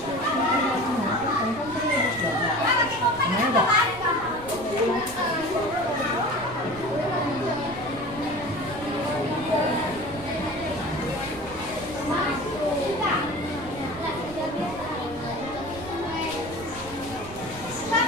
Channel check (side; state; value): right; noise; rumble, 16 dB below the sound